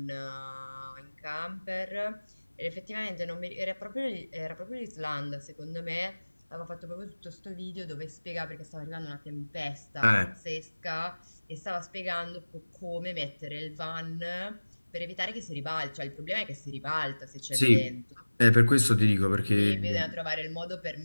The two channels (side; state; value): both; inverted; correlation -1.00